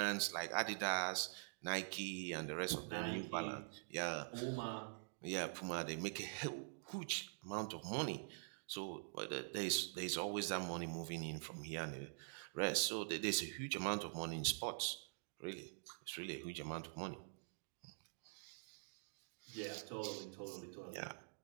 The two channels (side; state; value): left; silent; digital silence